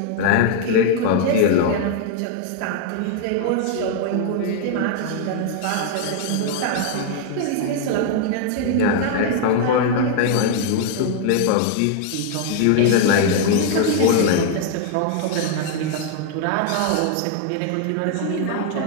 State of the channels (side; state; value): both; different; correlation 0.00